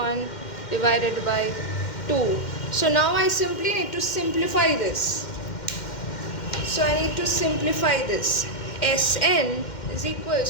divided by 2. So now I simply need to simplify this. So I need to simplify this. Sn is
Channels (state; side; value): late; right; 2.1 ms